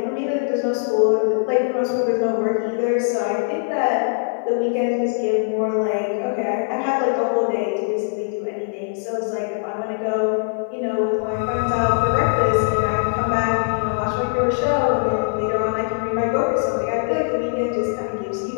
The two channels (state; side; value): silent; right; 57 dB below the other